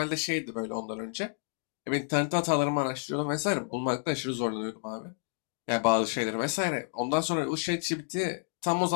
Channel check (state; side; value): silent; right; digital silence